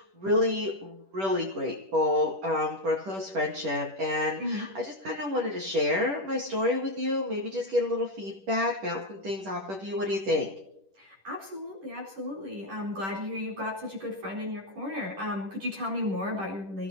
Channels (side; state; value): left; late; 10 ms